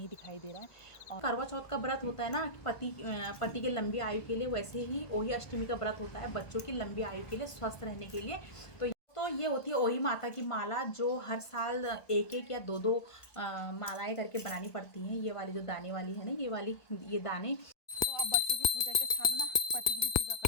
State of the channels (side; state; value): right; late; 1.5 ms